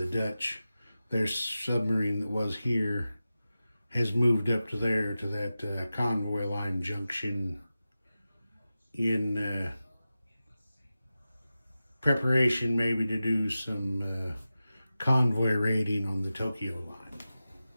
Dutch, their submarine that was here has moved up to there, to that convoy line junction in preparation maybe to do some convoy raiding on the Tokyo line.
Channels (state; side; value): inverted; both; correlation -0.94